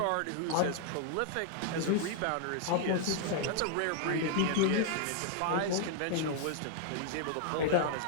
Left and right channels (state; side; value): different; both; correlation 0.00